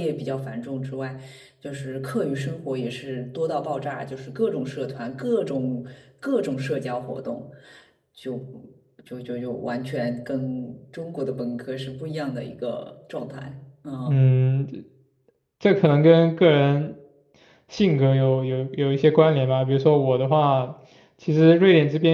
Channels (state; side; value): identical; both; correlation 1.00